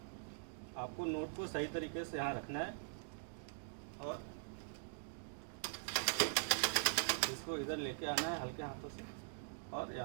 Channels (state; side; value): silent; left; digital silence